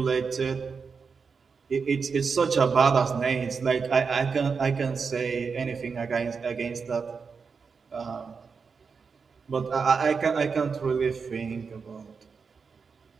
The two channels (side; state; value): left; quieter; 5.4 dB